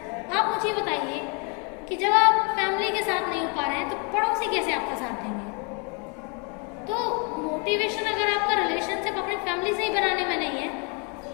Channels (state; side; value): quieter; right; 35.0 dB